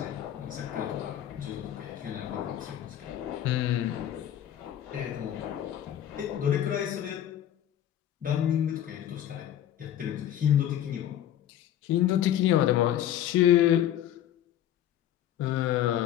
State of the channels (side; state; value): right; quieter; 11.3 dB